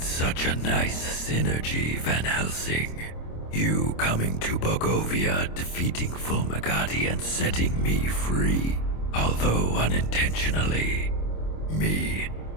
such a nice synergy, Van Helsing. You coming to Bogovia, defeating Fulmagati and setting me free, although unintentionally. Me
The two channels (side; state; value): right; late; 26 ms